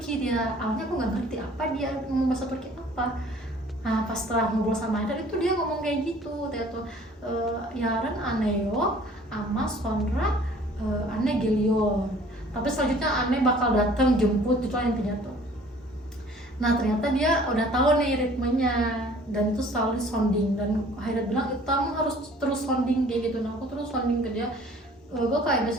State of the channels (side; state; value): both; normal; correlation 0.52